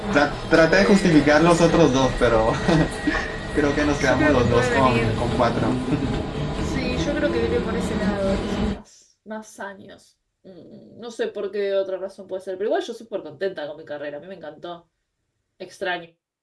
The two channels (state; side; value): identical; both; correlation 1.00